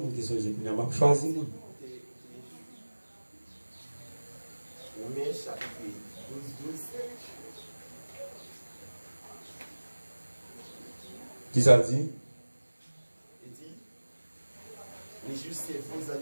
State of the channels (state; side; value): inverted; both; correlation -1.00